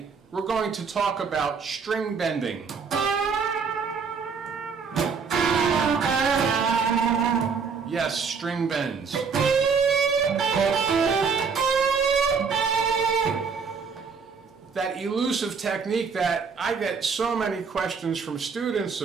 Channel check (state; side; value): quieter; left; 5.6 dB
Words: we're going to talk about string bending. Yes, string bends. That elusive technique that I get so many questions from students